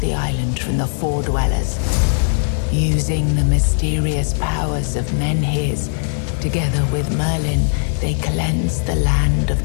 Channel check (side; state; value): right; silent; 63 dB below the other